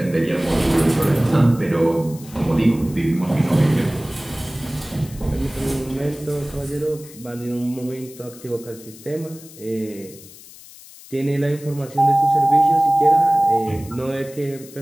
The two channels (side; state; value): left; noise; hiss, 19 dB below the sound